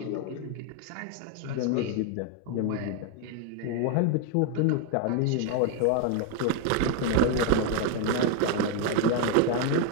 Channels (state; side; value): different; both; correlation 0.01